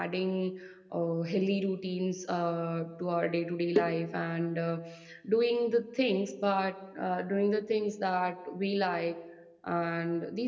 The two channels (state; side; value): identical; both; correlation 1.00